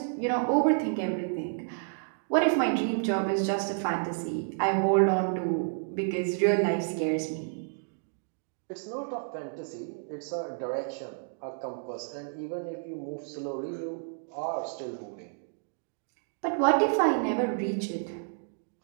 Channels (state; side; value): silent; left; digital silence